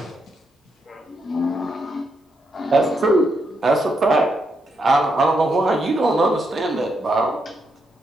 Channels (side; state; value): both; normal; correlation 0.80